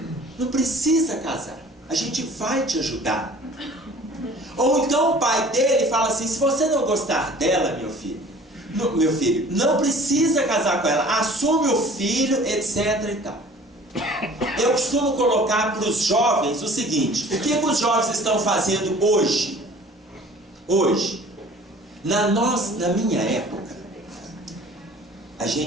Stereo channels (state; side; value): normal; both; correlation 0.48